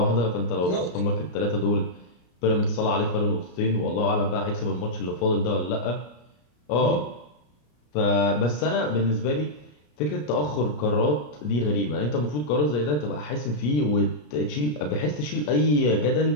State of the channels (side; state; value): right; late; 33 ms